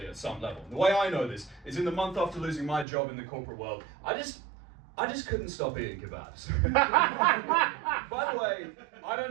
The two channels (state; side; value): drops out; left; at 2.9 s